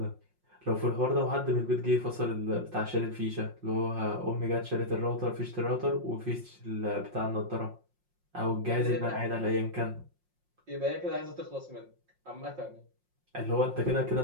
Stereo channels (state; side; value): late; left; 5.6 ms